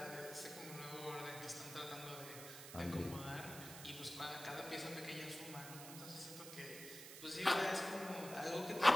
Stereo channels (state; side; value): noise; right; hiss, 11 dB below the sound